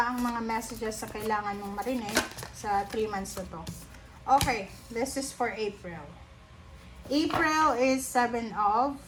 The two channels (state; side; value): identical; both; correlation 1.00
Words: ang mga messages na kailangan mong marinig sa 3 months na to. Okay, this is for April. April is 7 of